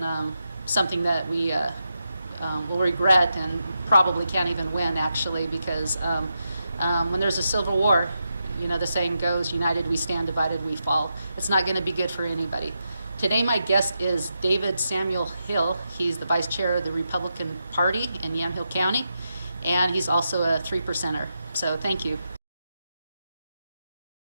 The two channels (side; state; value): both; inverted; correlation -0.86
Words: something that we will regret and probably can't even win, actually, because when there's a civil war, you know, the saying goes, united we stand, divided we fall. It's not going to be good for anybody. Today my guest is David Samuel Hill. He's the vice chair of the Republican Party in Yamhill County, and he's also a 3%er. So thank you.